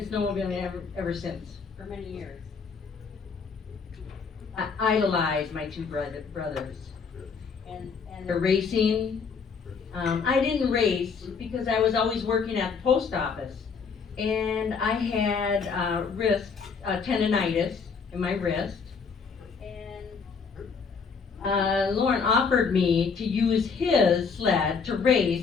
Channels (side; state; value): right; quieter; 5.5 dB